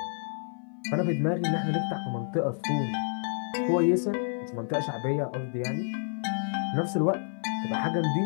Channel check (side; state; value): right; silent; 58 dB below the other